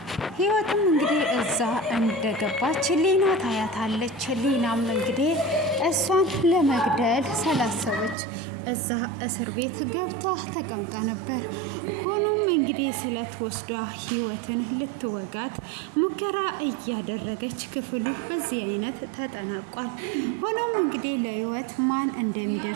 ሊና ታያታለች። ሊናም እንግዲህ እሷን ለመግደል ስላሰበች እዛ እስር ቤት ገብታ ተቀምጣ ነበር። ሆኖም እንግዲህ ስለት ወስዳ ህይወትን ልትወጋት ሙከራ እያደረገች ክፍሉ በዚህ አይነት ተጠናቋል። ሆኖም እንግዲህ ለህይወት ማን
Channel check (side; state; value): left; drops out; at 8.2 s